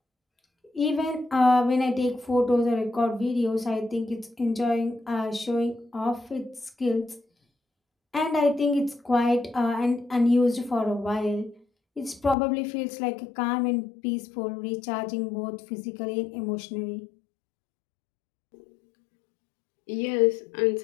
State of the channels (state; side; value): drops out; right; at 12.4 s